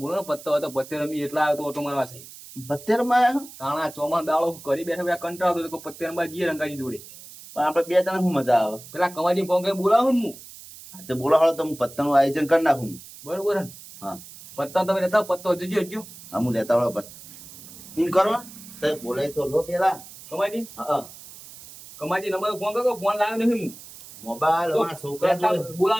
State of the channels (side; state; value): right; noise; hiss, 17 dB below the sound